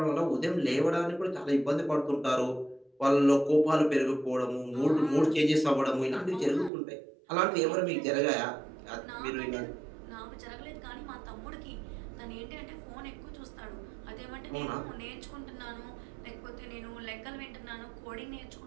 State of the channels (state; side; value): drops out; left; at 6.7 s